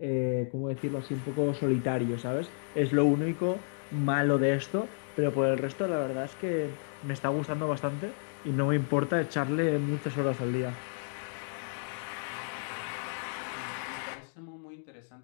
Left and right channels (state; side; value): silent; right; digital silence